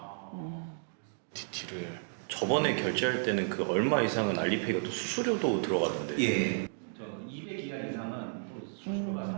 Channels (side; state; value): left; silent; digital silence